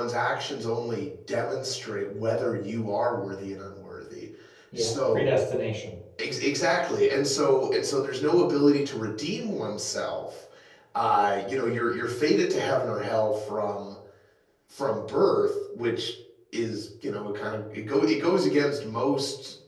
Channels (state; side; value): identical; both; correlation 1.00